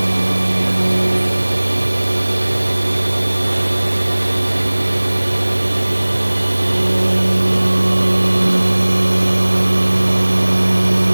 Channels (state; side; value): inverted; both; correlation -1.00